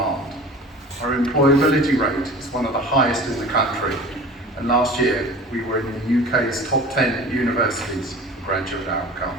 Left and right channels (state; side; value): normal; both; correlation 0.40